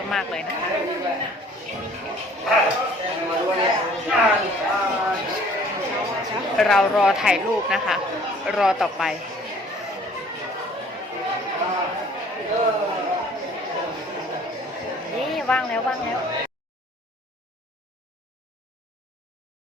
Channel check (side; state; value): both; normal; correlation 0.54